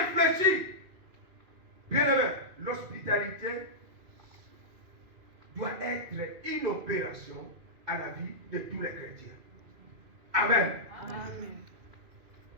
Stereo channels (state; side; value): late; left; 2.5 ms